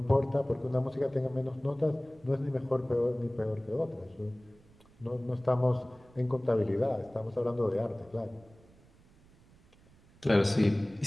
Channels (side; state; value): right; noise; rumble, 27 dB below the sound